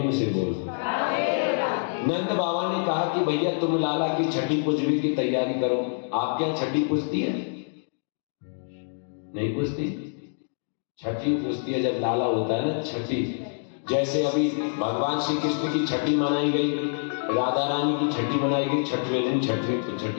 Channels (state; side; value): silent; right; digital silence